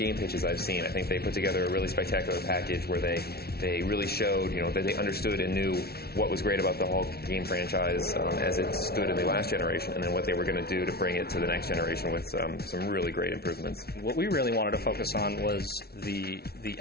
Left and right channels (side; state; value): right; late; 0.45 ms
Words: pitches I've seen. I think they put together a really spectacular package where they really showed, that they understood and knew what was great about the Hulk game franchise as it stood in the last generation, and then what they were going to do to bring it to the next generation with some really great improvements. What we really wanted to focus on was the